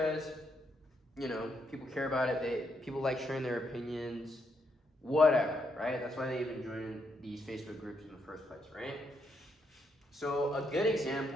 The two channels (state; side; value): normal; both; correlation 0.78